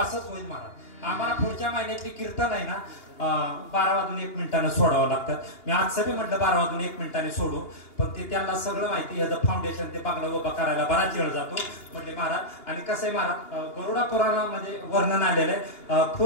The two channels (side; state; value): right; late; 2.9 ms